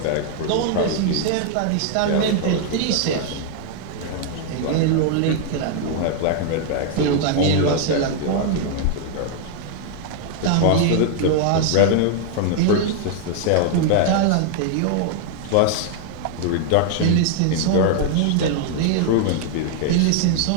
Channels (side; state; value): both; different; correlation 0.00